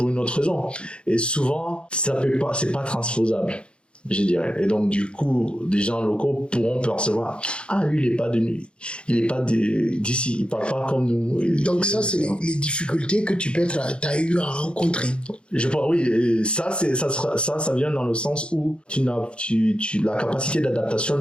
une autre raison. Et souvent, c'est pas transposable, je dirais. Et donc, du coup, des gens locaux pourront percevoir, ah, lui, il est pas d'ici, il parle pas comme nous. Donc ça, c'est les difficultés que t'as eu à rencontrer. Je pense, oui, et ça vient dans le sens où la capacité d'adaptation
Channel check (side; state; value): right; late; 0.056 ms